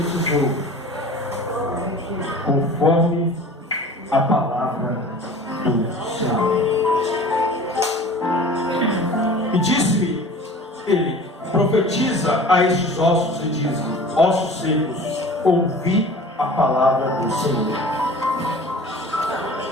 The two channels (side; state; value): both; normal; correlation 0.42